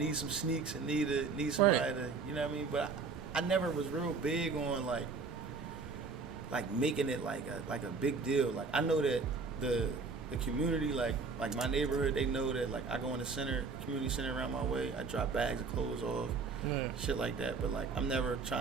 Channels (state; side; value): quieter; left; 4.6 dB